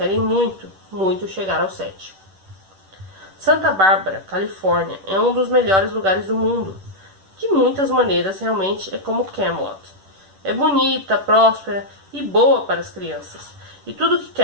muito, muito chegar ao 7. Santa Bárbara, Califórnia, é um dos melhores lugares do mundo. De muitas maneiras, realmente é como Camelot. É bonita, próspera e boa para as crianças. E tudo que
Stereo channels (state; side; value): late; left; 10 ms